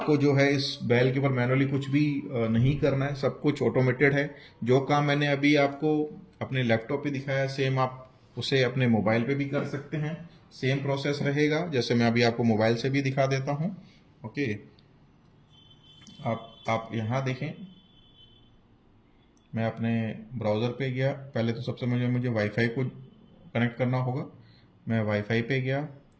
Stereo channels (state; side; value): identical; both; correlation 1.00